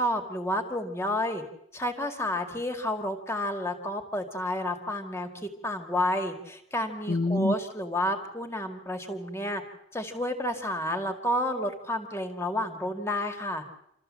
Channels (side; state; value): both; normal; correlation 0.56